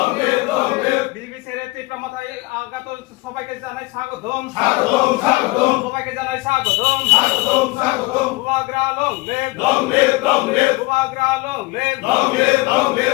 সবাইকে জানাই স্বাগতম স্বাগতম স্বাগতম সবাইকে জানাই স্বাগতম স্বাগতম স্বাগতম বুবাগ্রা লং লে বুবাগ্রা লং লে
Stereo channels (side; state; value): right; quieter; 22.7 dB